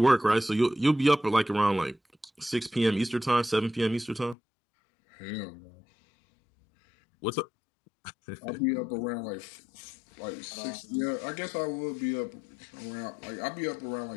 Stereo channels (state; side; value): drops out; right; at 4.4 s